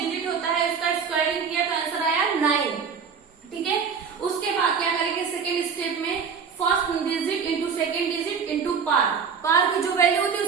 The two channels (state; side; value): quieter; left; 6.3 dB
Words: होता है उसका स्क्वायरिंग किया तो आंसर आया 9, ठीक है, उसके बाद क्या करेंगे सेकेंड स्टेप में first digit into second digit into पार, पार की जो वैल्यू होती है